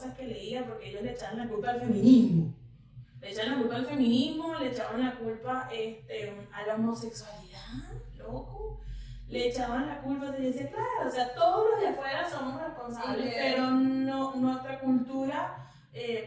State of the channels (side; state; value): both; identical; correlation 1.00